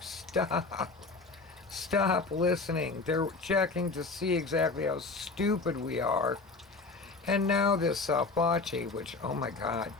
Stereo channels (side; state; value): right; quieter; 3.9 dB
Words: Stop listening. They're checking to see exactly how stupid we are. And now this Fauci, which, oh my God.